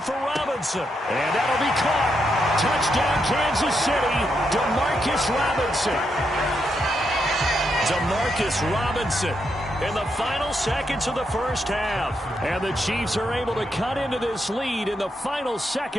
for Robinson. And that'll be caught. Touchdown, Kansas City. DeMarcus Robinson in the final seconds of the first half. And the Chiefs are able to cut into this lead in the final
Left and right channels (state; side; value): normal; both; correlation 0.81